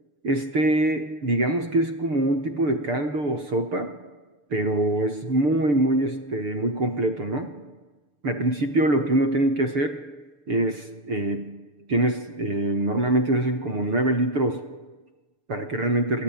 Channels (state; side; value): late; left; 6.8 ms